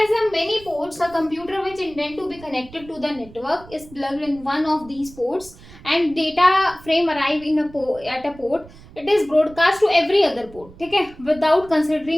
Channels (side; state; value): right; noise; rumble, 21 dB below the sound